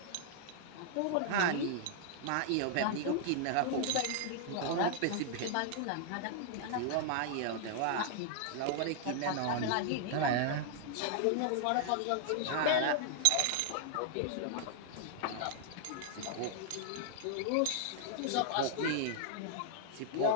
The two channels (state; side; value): different; both; correlation -0.01